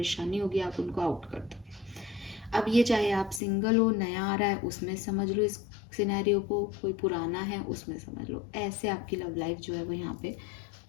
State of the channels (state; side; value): drops out; right; at 3.4 s